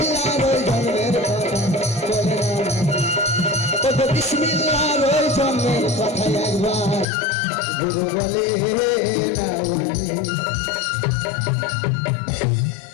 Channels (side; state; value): right; drops out; at 7.1 s